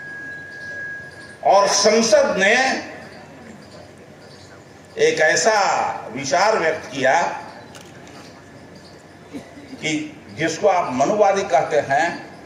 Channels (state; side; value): identical; both; correlation 1.00